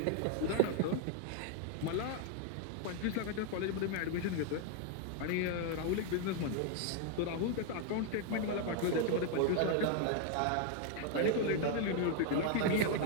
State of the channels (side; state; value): both; different; correlation 0.00